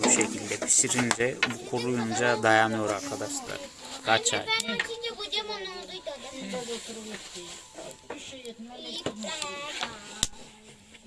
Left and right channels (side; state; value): both; identical; correlation 1.00